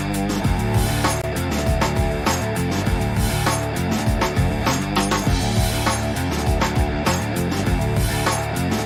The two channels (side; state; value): both; identical; correlation 1.00